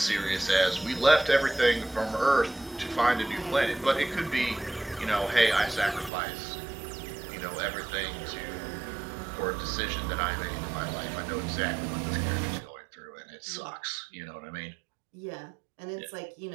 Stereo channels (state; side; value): drops out; left; at 6.1 s